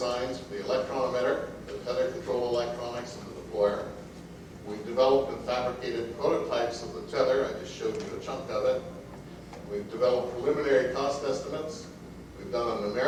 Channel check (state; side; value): identical; both; correlation 1.00